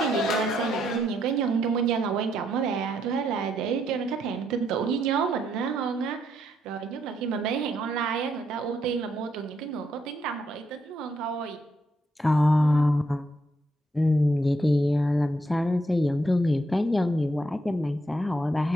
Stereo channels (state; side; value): normal; both; correlation 0.76